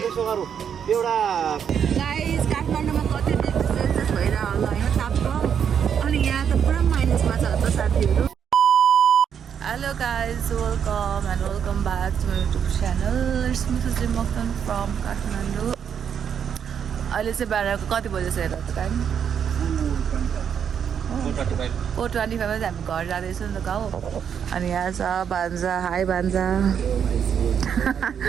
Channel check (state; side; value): quieter; left; 7.9 dB